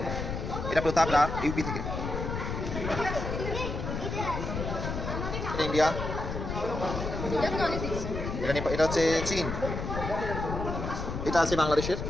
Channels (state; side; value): noise; left; rumble, 4 dB below the sound